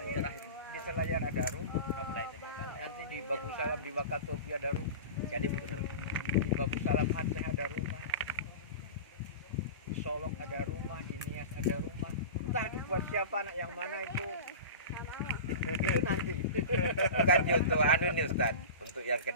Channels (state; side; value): inverted; both; correlation -0.31